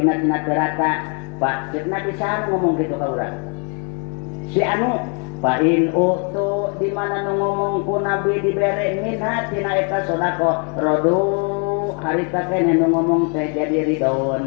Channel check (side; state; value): right; quieter; 38.0 dB